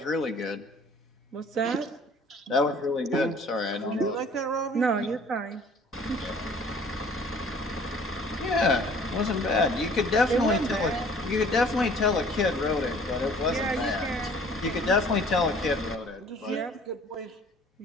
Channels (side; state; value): both; normal; correlation 0.53